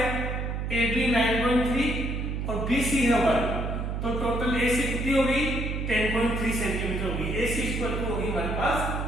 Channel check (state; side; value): noise; right; hum, 2 dB below the sound